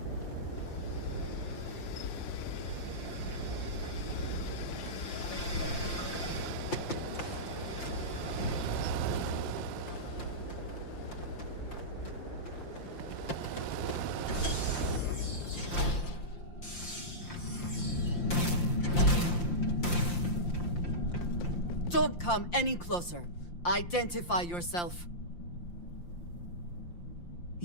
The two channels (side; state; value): right; late; 5.7 ms